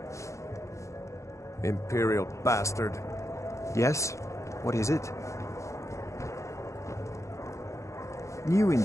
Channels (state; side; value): late; right; 0.15 ms